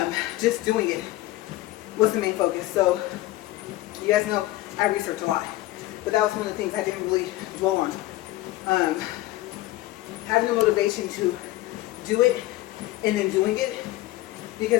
Just doing it was the main focus. So you guys know I research a lot, but that was one of the things I didn't really dwell on. Having the motivation to do it and then doing it,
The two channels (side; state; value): right; quieter; 17.1 dB